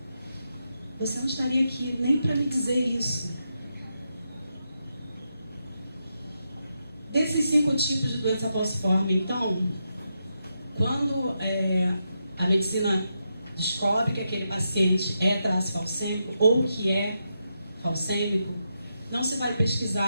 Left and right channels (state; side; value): inverted; both; correlation -0.85